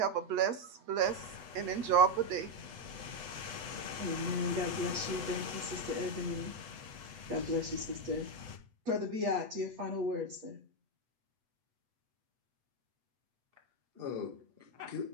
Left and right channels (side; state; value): left; late; 8.3 ms